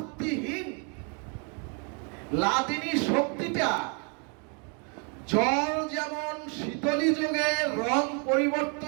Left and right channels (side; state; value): left; quieter; 37.3 dB